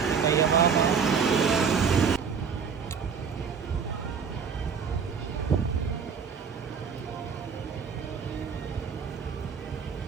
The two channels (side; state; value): left; quieter; 6.3 dB